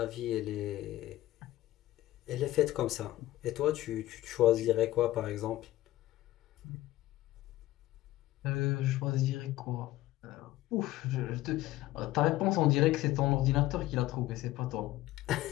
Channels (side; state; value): right; quieter; 16.0 dB